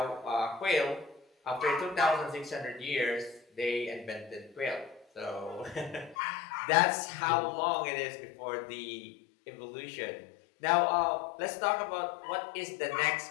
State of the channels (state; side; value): drops out; right; at 6.2 s